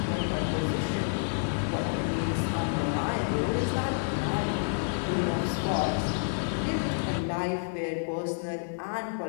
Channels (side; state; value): right; silent; digital silence